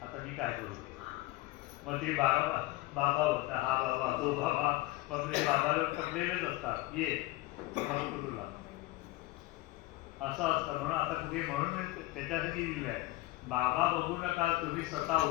आता मी काय करू. मग ते बाबा होता, हा बाबा तो बाबा, मग ते बाबाला पकडलेलेच असतात, ये तुला असं असतं. म्हणून आता कुठे म्हणून त्याच्यासाठी दिलं आहे, बाबा बघू नका, तुम्ही स्वतः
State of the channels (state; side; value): quieter; right; 18.6 dB